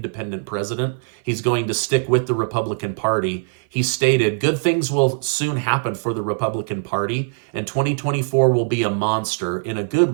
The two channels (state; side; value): silent; left; 57 dB below the other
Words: president. He's going to stick with the Republican Party. He stated, good things will soon happen for the Republican Party, and 2024 will be a monster, in a good